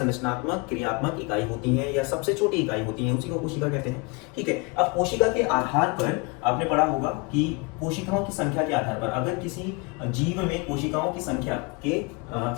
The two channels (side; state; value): right; quieter; 29.3 dB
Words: क्रियात्मक इकाई होती हैं, या सबसे छोटी इकाई होती हैं, उसी को कोशिका कहते हैं। ठीक है। अब कोशिका के आधार पर आपने पढ़ा होगा कि कोशिकाओं की संख्या के आधार पर, अगर किसी जीव में कोशिका की संख्या के